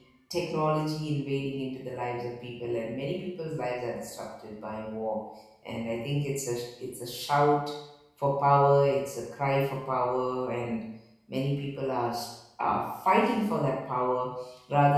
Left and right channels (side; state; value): both; identical; correlation 1.00